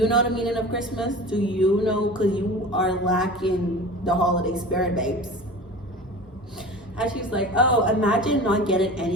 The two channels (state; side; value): normal; both; correlation 0.36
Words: know the meaning of Christmas? Do you know? Because you are lacking the holiday spirit, babes. And she's like, oh, imagine not getting